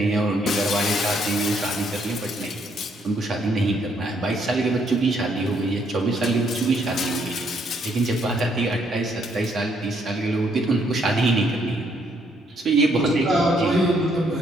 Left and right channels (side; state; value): both; normal; correlation 0.70